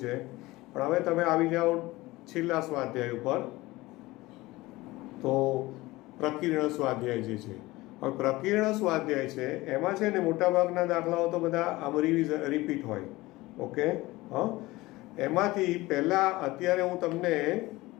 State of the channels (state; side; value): quieter; right; 19.8 dB